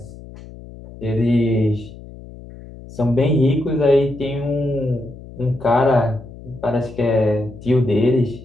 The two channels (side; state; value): left; noise; hum, 17 dB below the sound